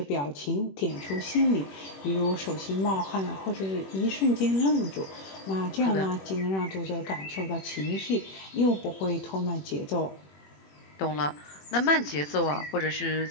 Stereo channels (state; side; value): late; right; 21 ms